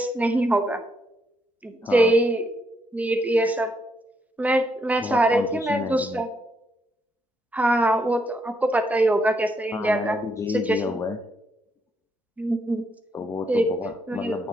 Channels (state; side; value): normal; both; correlation 0.77